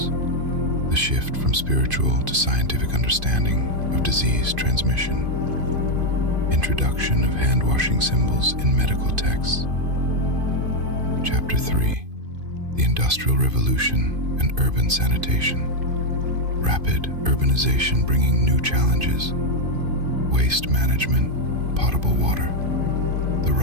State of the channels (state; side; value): late; left; 2.5 ms